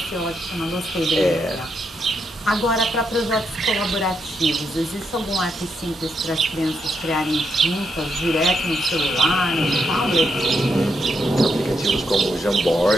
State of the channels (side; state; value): both; normal; correlation 0.80